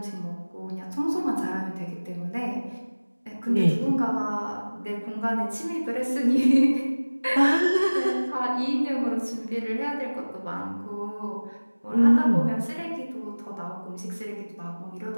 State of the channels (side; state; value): both; inverted; correlation -1.00